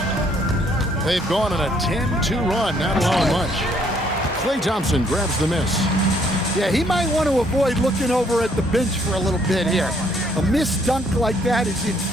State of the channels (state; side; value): normal; both; correlation 0.66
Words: They've gone on a 10-2 run, not allowing much. Klay Thompson grabs the miss. Yeah, he might want to avoid looking over at the bench for a little bit here. A missed dunk like that is